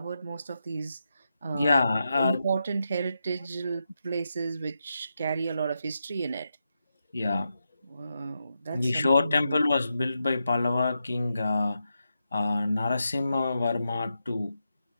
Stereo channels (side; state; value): both; inverted; correlation -0.87